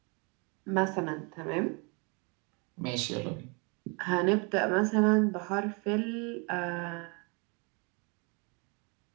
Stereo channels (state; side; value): quieter; left; 32.5 dB